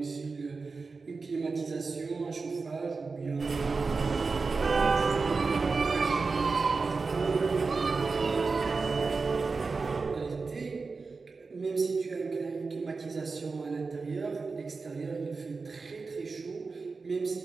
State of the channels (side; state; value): left; quieter; 4.3 dB